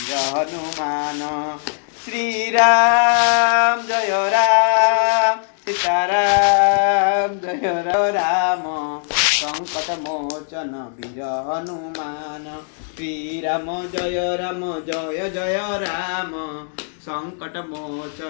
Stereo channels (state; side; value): silent; right; digital silence